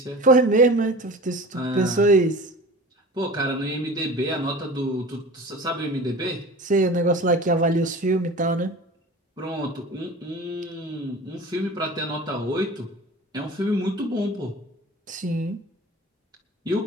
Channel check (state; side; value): normal; both; correlation 0.38